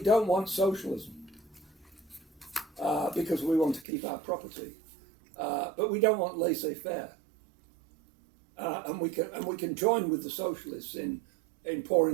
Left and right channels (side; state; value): left; drops out; at 3.9 s